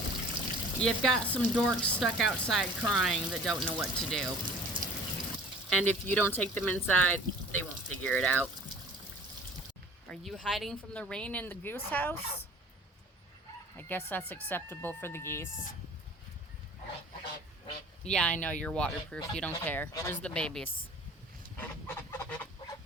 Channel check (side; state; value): both; normal; correlation 0.46